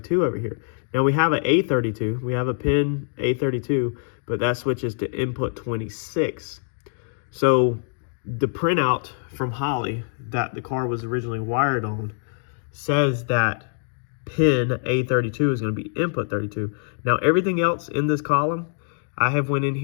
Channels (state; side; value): silent; right; digital silence